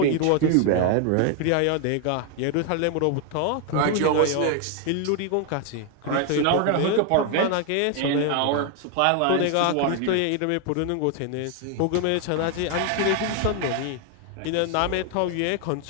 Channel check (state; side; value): different; both; correlation 0.00